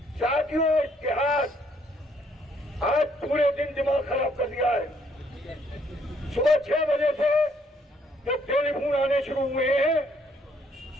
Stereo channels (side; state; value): both; normal; correlation 0.68